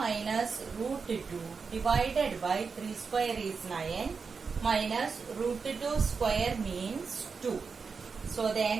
root 2 divided by 3 square is 9 minus root 2 square means 2. So the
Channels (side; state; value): left; quieter; 5.2 dB